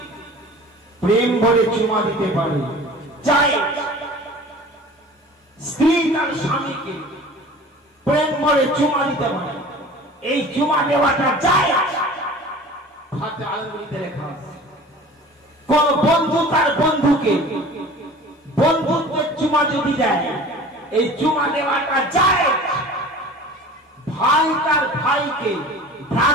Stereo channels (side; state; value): both; normal; correlation 0.42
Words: প্রেম ভরে চুমা দিতে পারে, চাই স্ত্রী তার স্বামীকে প্রেম ভরে চুমা দিতে পারে। এই চুমা দেওয়াটা যায় ফাতোয়া আলমগীরিতে লেখা আছে। কোন বন্ধু তার বন্ধু বন্ধুকে বন্ধুত্বের চুমা যদি দেয়, এই চুমা দেওয়াটা যায়। ভাই তার ভাইকে